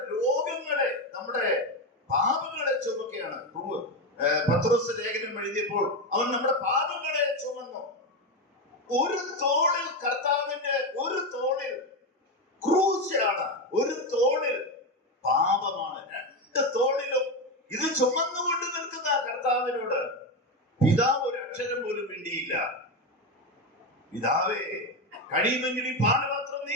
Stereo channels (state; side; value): normal; both; correlation 0.13